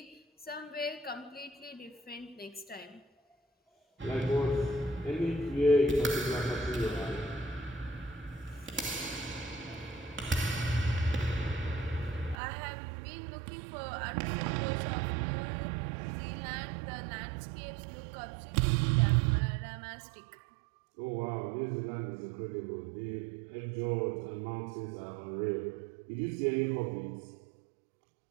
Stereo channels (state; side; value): drops out; left; at 12.4 s